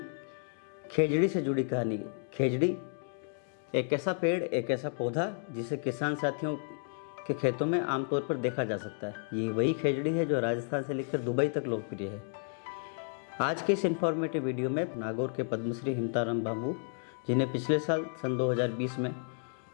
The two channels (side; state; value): right; silent; 56 dB below the other